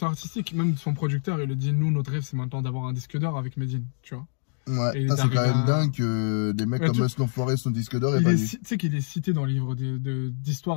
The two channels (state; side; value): silent; right; digital silence